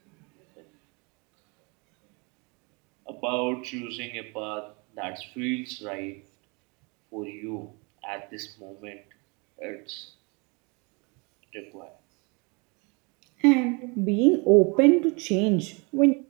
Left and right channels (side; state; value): left; quieter; 30.8 dB